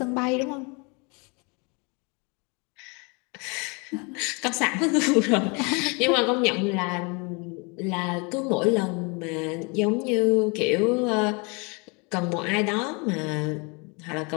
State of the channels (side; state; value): right; quieter; 31.1 dB